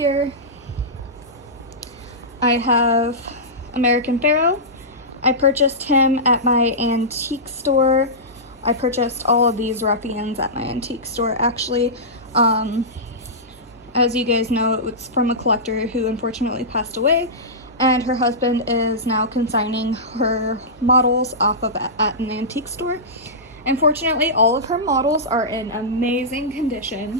I have American Pharoah. I purchased him at my antique store. I purchased all of these ruffians at my antique store, actually. As you guys know, it's from a collector who unfortunately passed away, and her husband is now consigning her models off of at an antique store. Unfortunately, all of her models are in amazing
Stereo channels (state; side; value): normal; both; correlation -0.16